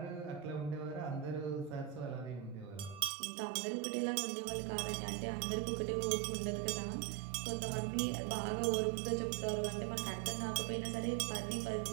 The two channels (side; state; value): left; drops out; at 3.1 s